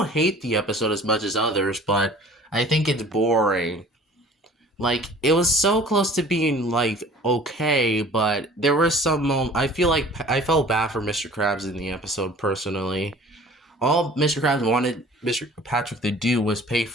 hate the episode as much as others, but I think it's boring. Like, it was so close to being like okay, but there were some I feel like I felt bad for Mr. Krabs in the episode personally. All Mr. Krabs wanted Mr. Patrick to do was pay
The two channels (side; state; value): both; normal; correlation 0.48